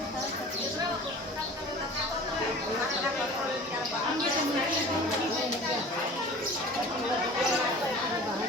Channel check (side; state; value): both; normal; correlation 0.41